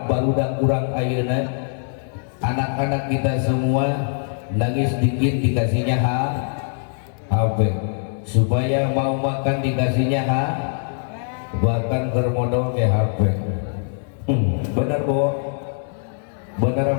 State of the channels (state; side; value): silent; right; digital silence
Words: barudak kurang ayeuna anak-anak kita semua nangis dikit dikasihnya HP, supaya mau makan dikasihnya bahkan termodal ke HP. Benar boh, benar